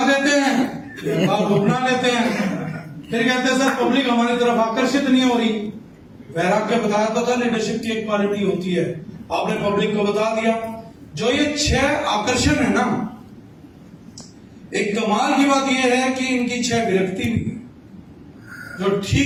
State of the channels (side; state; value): both; identical; correlation 1.00